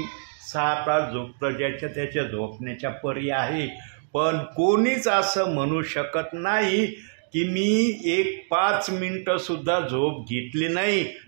6 तास झोपतं. ज्याच्या त्याच्या झोपण्याच्या परी आहे. पण कोणीच असं म्हणू शकत नाही की मी एक 5 मिनटंसुद्धा झोप घेतली नाही,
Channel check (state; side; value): silent; left; digital silence